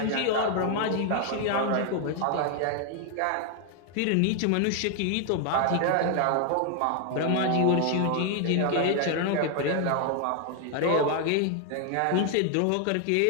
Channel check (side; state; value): both; different; correlation 0.00